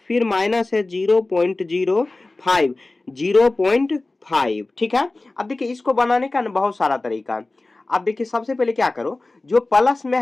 फिर माइनस है 0.05, 0.5। ठीक है। अब देखिए इसको बनाने का ना बहुत सारा तरीका है। अब देखिए सबसे पहले क्या करो, जो प्लस में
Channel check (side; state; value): right; quieter; 3.1 dB